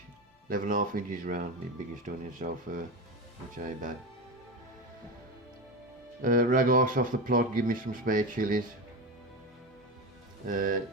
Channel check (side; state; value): both; normal; correlation 0.20